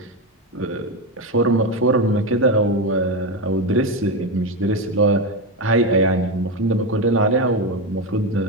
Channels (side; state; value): both; normal; correlation 0.12